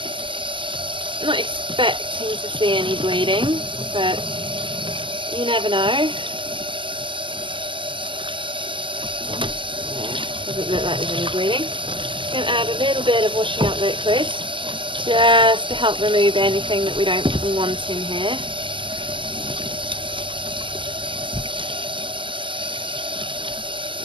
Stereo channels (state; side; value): late; left; 0.25 ms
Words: Not expecting to see any bleeding, but you never know. Doesn't look like there's any bleeding. I'm going to add a little bit of washing up liquid just to help remove anything that we don't want in here.